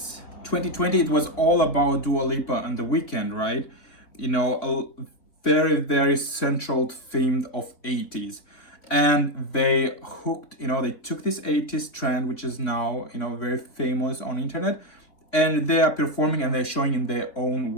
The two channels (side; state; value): right; late; 3.3 ms